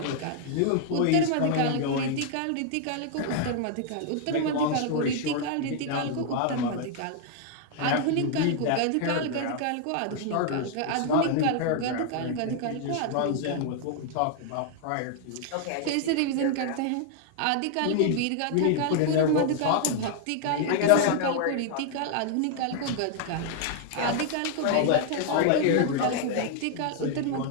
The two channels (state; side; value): different; both; correlation 0.00